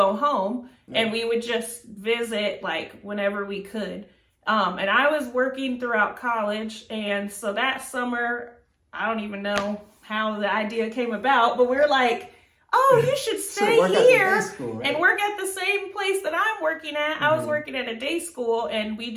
home and we would just visit like whenever we could. And I was working throughout college. And so that summer, I don't even know how the idea came about, but we're like, oh, you should stay here and work at the same place that I'm working at. I was working at a day school and we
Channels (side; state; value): both; identical; correlation 1.00